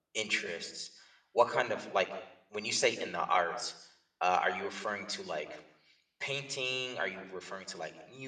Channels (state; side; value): identical; both; correlation 1.00